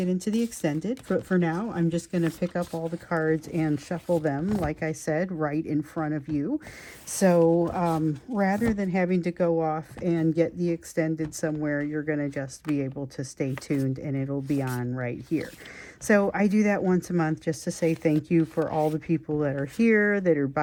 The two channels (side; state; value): both; identical; correlation 1.00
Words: into the extended. But for now, I'm just going to pick up all the cards and shuffle them, like I said, right in front of you. So rather than having to go off and get the extended somewhere, you're going to just be able to stay tuned and it'll be on right here. So I do that once a month just to say thank you for all the people that are here, that are